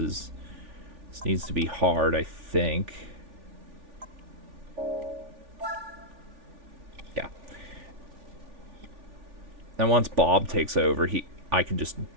needs to be hard, I think. Yeah. And once Bob takes over, I can just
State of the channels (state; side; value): late; left; 3.4 ms